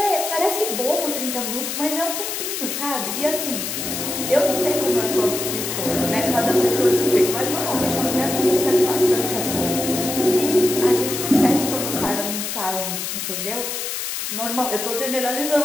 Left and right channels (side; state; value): left; noise; hiss, 4 dB below the sound